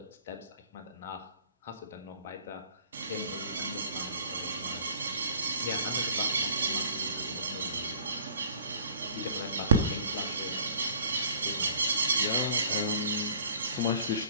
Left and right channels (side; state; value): both; inverted; correlation -0.53